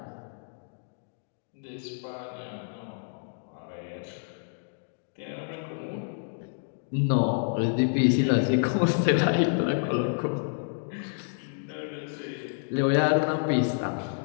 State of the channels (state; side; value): silent; right; digital silence